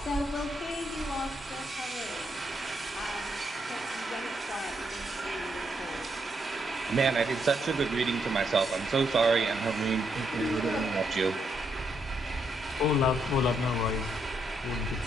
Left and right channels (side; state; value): both; normal; correlation 0.77